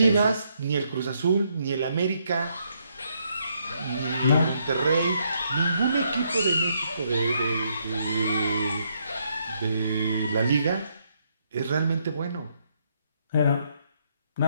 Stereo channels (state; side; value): inverted; both; correlation -0.74